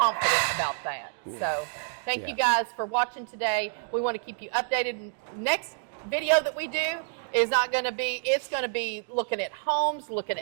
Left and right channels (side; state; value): left; silent; digital silence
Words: about that. Yeah. So thank you guys for watching today. We want to keep you updated. Next video that we do is not going to be, it's going to be looking at homes, looking